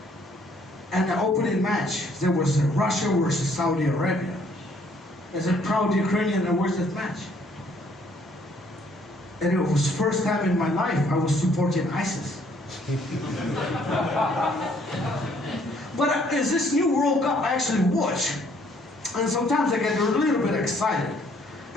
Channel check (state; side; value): normal; both; correlation 0.64